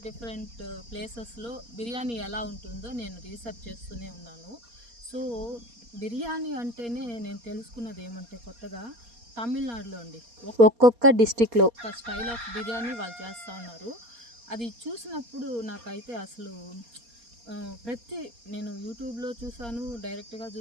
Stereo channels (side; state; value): left; late; 4.2 ms